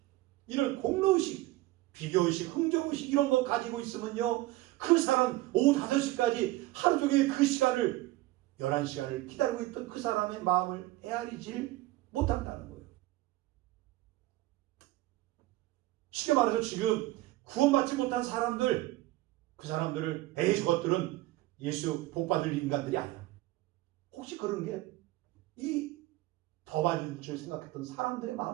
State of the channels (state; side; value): quieter; left; 17.9 dB